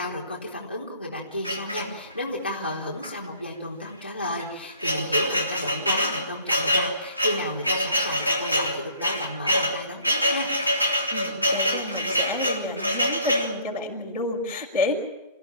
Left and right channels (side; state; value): both; inverted; correlation -0.56